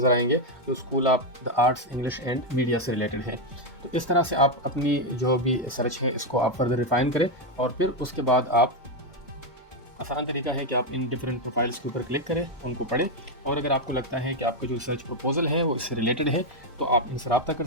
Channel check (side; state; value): both; normal; correlation 0.04